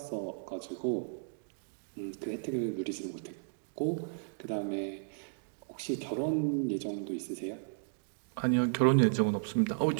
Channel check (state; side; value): silent; left; digital silence